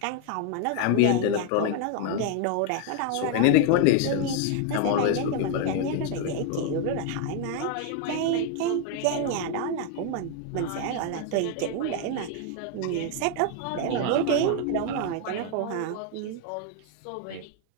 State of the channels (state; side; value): different; both; correlation 0.00